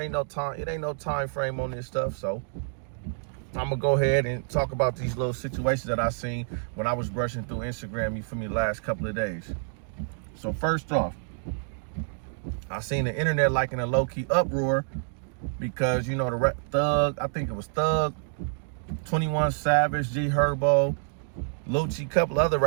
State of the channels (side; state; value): left; silent; digital silence